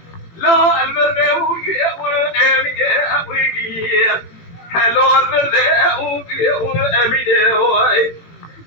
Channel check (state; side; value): late; right; 18 ms